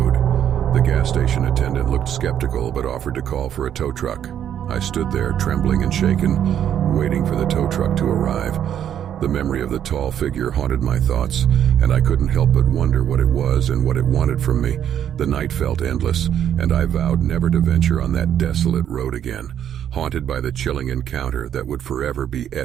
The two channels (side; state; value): left; quieter; 9.8 dB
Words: The gas station attendant looked skeptical, but offered to call for a tow truck. I stood there, trembling and shaken, waiting for the tow truck to arrive. The memory of the tall figure haunted my thoughts, and I couldn't help but wonder what it was and what it wanted from me. The night felt endless, and I vowed never to venture on that desolate road again, haunted by the chilling encounter that would forever be